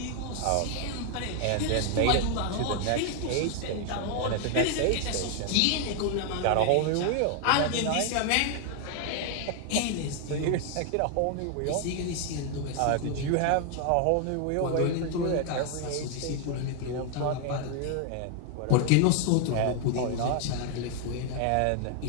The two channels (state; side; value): different; both; correlation 0.00